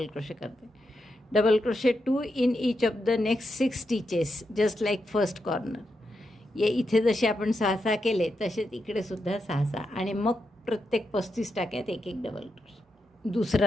क्रोशे करते. Double crochet 2 in each of the next 6 stitches just like first corner. ये इथे जसे आपण 6-6 केले तसेच इकडे सुद्धा 6-6 आणि मग प्रत्येक 35 टाक्यात एक डबल क्रोशे.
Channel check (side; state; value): both; normal; correlation 0.85